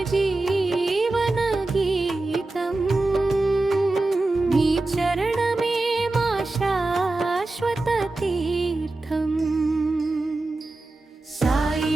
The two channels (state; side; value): quieter; left; 3.0 dB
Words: జీవన గీతం నీ చరణమే మా శాశ్వత తీర్థం సాయి